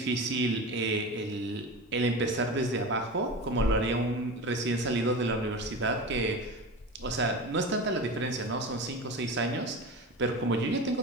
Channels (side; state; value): both; normal; correlation 0.28